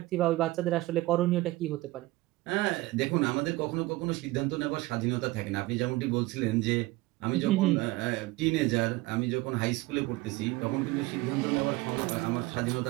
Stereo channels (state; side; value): quieter; left; 19.6 dB